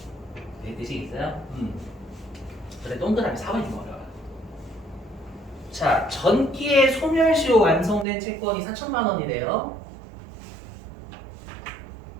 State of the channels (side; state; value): left; drops out; at 8.1 s